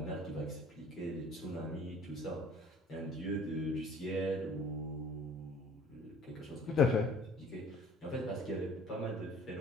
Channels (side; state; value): both; normal; correlation 0.51